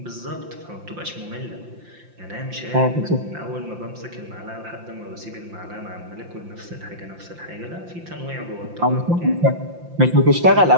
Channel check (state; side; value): late; left; 5.8 ms